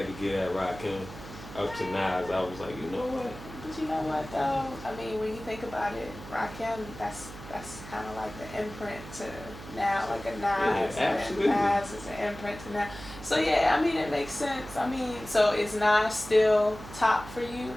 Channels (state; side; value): noise; right; hum, 14 dB below the sound